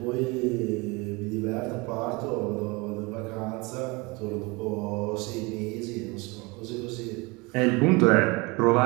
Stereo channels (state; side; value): quieter; left; 26.2 dB